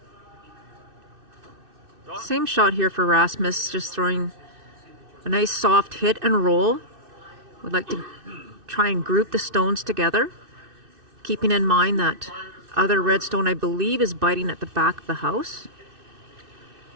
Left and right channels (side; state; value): left; late; 2.6 ms